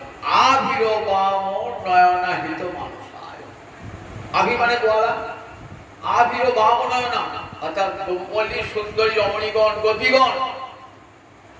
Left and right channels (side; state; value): both; identical; correlation 1.00